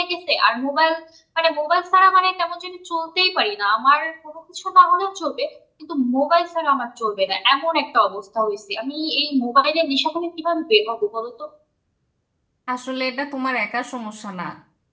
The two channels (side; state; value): both; identical; correlation 1.00